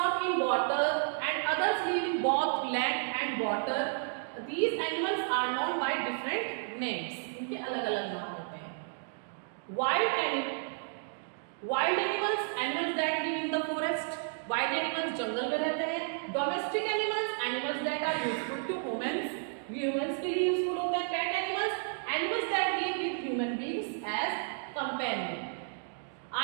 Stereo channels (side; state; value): left; silent; digital silence